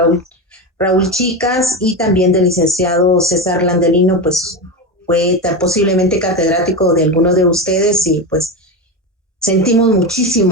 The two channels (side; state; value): both; normal; correlation 0.17